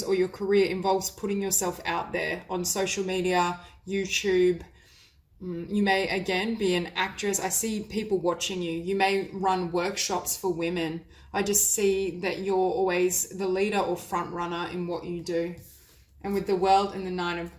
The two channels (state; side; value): identical; both; correlation 1.00